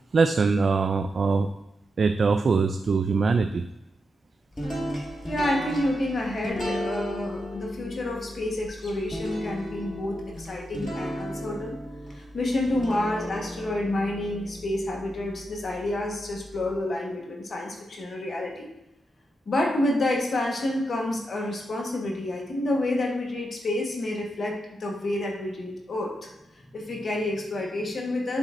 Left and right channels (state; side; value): normal; both; correlation 0.85